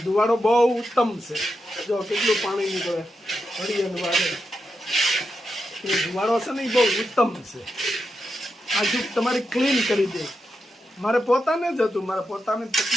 ધુવાડો બહુ ઉત્તમ છે. જો કેટલું પાણી નીકળે હળિયાનું વાગે. એ ધુવાડો છે ને એ બહુ ઉત્તમ છે. આખું તમારી ક્લીન કરી દે. મારે પોતાને જ હતું, મારે પોતાને જ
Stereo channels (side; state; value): both; normal; correlation 0.86